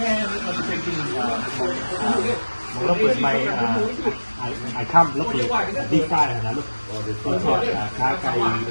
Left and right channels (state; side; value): inverted; both; correlation -1.00